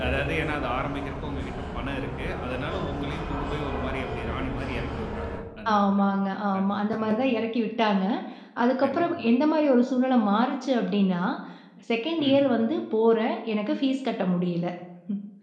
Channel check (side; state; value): both; identical; correlation 1.00